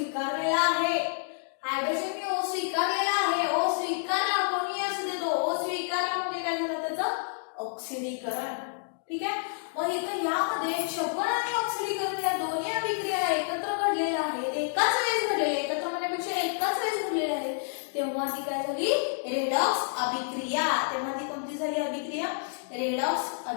आहे. हायड्रोजनने O स्वीकारलेला आहे O स्वीकारला कोणी असू दे तो O स्वीकारला म्हणजे काय झालं त्याचं ऑक्सिडीकरण. ठीक आहे. मग इथं यामध्ये क्षपन आणि ऑक्सिडीकरण या दोन्ही अभिक्रिया एकत्र घडलेल्या आहेत, एकाच वेळेस घडलेल्या, एकत्र म्हणण्यापेक्षा एकाच वेळेस घडलेल्या आहेत. तेव्हा ती काय झाली? रेडॉक्स अभिक्रिया. तेव्हा ती कोणती झाली अभिक्रिया? रेडॉक्स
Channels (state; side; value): silent; right; digital silence